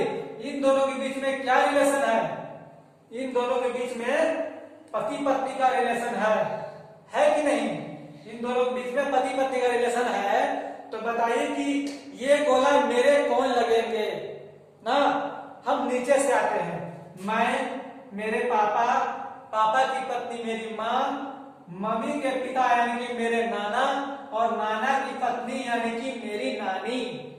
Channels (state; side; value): identical; both; correlation 1.00